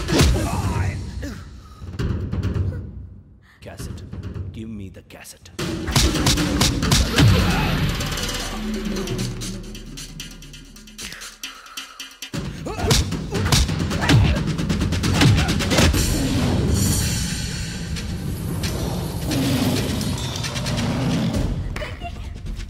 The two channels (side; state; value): both; identical; correlation 1.00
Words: Cassette, give me the cassette.